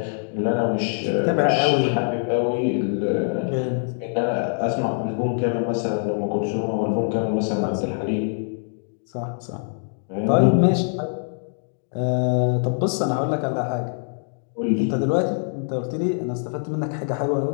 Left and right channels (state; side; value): silent; right; digital silence